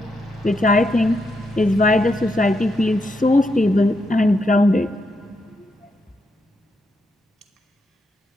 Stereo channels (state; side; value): normal; both; correlation 0.81